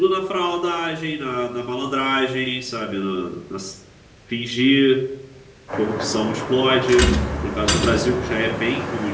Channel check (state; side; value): identical; both; correlation 1.00